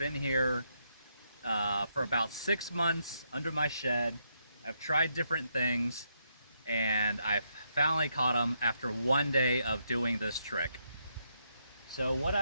here for about 6 months under my shed. I've tried different things and I've finally caught him after one day of doing this trick. So what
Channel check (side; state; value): both; inverted; correlation -0.78